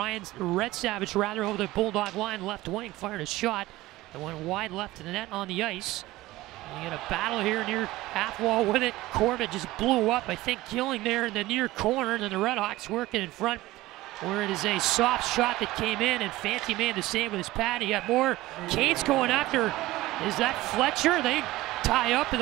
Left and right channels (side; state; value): left; quieter; 17.7 dB